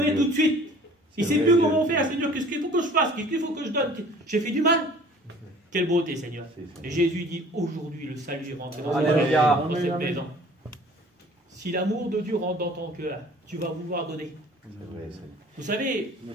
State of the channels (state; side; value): normal; both; correlation 0.50